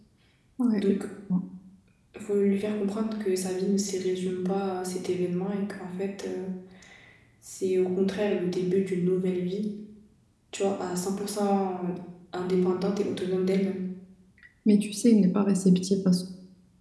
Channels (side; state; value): both; identical; correlation 1.00